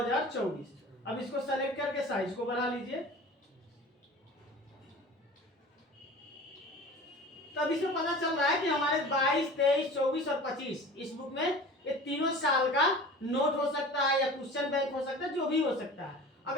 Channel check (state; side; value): normal; both; correlation 0.39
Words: अब इसको सेलेक्ट करके साइज को बढ़ा लीजिए। तब इसमें पता चल रहा है कि हमारे 22, 23, 24 और 25 इस बुक में ये तीनों साल का नोट हो सकता है, या क्वेश्चन बैंक हो सकता है, जो भी हो सकता है।